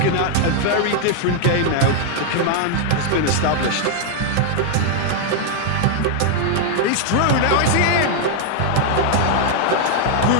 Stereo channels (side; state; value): both; different; correlation 0.00